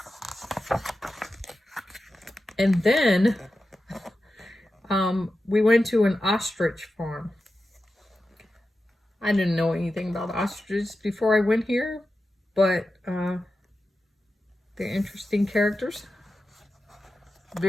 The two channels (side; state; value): both; normal; correlation 0.92